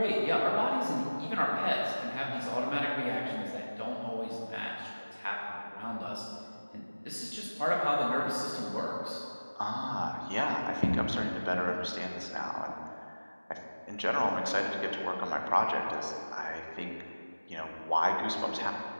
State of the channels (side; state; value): both; inverted; correlation -1.00